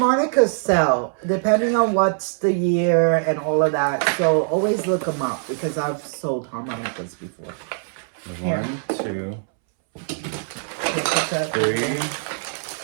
sell, depending on what's the year and all of that. So always look them up, because I've sold harmonicas before. One, two, three,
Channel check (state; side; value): silent; left; 64 dB below the other